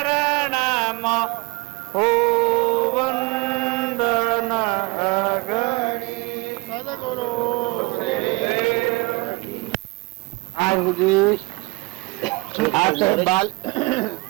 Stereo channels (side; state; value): left; quieter; 25.6 dB